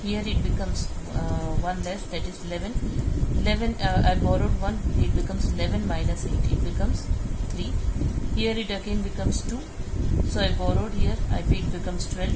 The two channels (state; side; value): identical; both; correlation 1.00